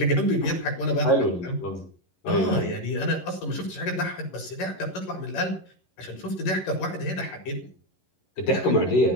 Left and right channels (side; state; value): right; late; 11 ms